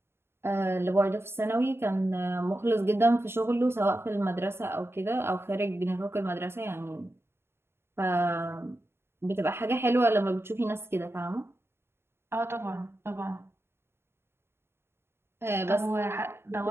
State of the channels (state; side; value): late; left; 0.12 ms